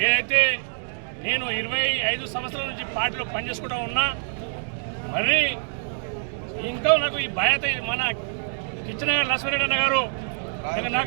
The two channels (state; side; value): silent; left; digital silence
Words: ఏదైతే నేను 25 సంవత్సరాల నుంచి పార్టీలో పనిచేసుకుంటూ ఉన్నా, మరి ఇంకా నాకు ఈ బాధ్యత మన కిచ్చనగర్ లక్ష్మీరెడ్డి అన్న గారు